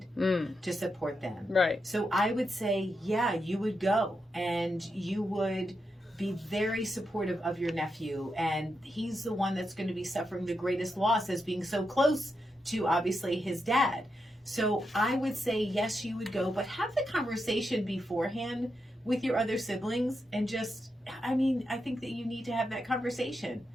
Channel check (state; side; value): normal; both; correlation 0.85